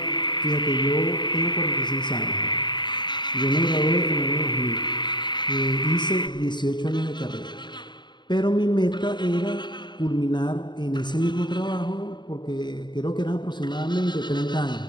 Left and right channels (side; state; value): right; late; 0.22 ms